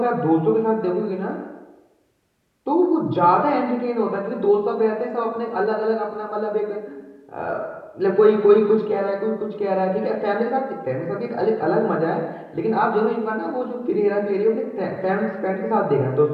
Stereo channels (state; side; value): identical; both; correlation 1.00